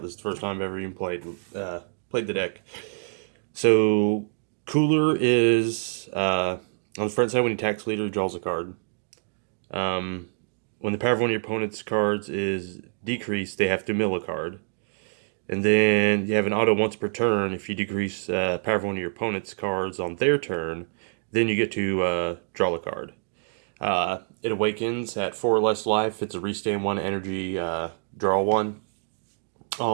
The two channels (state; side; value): silent; left; digital silence